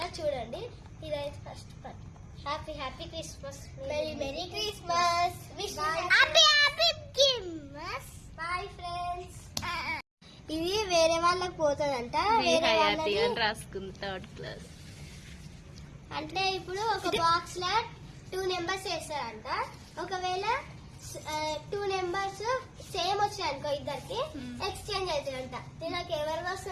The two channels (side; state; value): both; identical; correlation 1.00